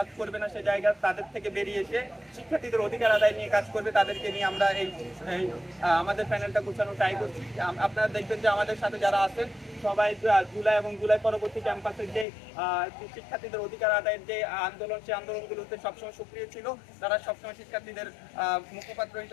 করবে না, সেই জায়গা তাদের থেকে বেরিয়ে এসে শিক্ষার্থীদের অধিকার আদায় নিয়ে কাজ করবে। তাদেরকে নিয়ে আমরা এই আমাদের প্যানেলটা গোছানো ট্রাই করছি। আপনারা দেখবেন যে আমাদের সাথে যারা আছেন সবাই জুলাই এবং জুলাই পরবর্তী ক্যাম্পাসের যে শিক্ষার্থীদের অধিকার আদায়ের যে আন্দোলন, সেই আন্দোলনগুলোতে সবসময় সক্রিয় ছিল। তারা সবসময় শিক্ষার্থীদের মুখপাত্র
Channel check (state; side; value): drops out; right; at 12.2 s